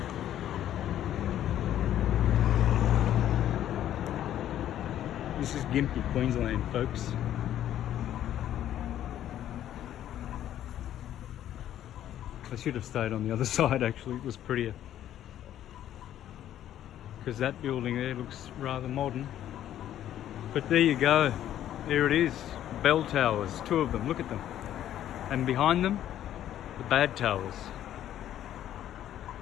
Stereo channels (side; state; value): right; quieter; 11.6 dB